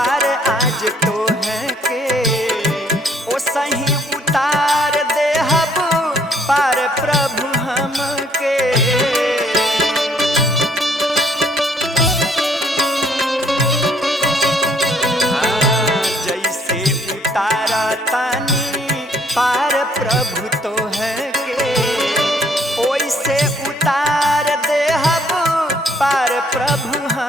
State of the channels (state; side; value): normal; both; correlation 0.64